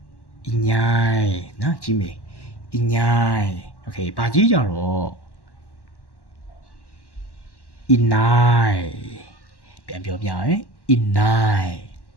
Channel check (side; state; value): right; late; 1.1 ms